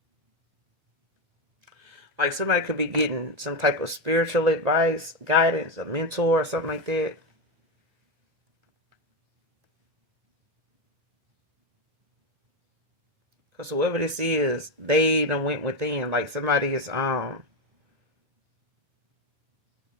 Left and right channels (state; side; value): late; left; 1.9 ms